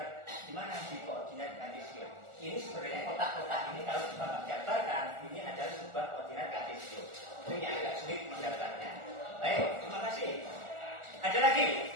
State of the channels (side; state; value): left; late; 1.4 ms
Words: di mana di koordinat kartesius. Ini sebenarnya kotak-kotak ini kalau Bapak gambarkan, ini adalah sebuah koordinat kartesius. Itu yang agak sulit menggambarnya. Baik, terima kasih. Ada lagi